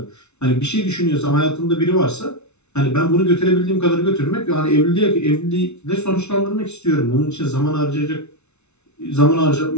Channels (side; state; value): right; late; 0.82 ms